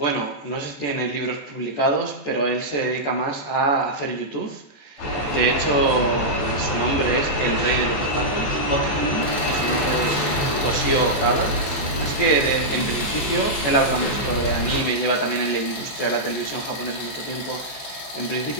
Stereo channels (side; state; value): right; late; 14 ms